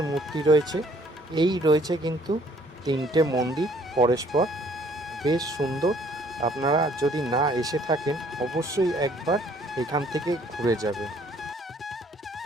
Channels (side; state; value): both; normal; correlation 0.61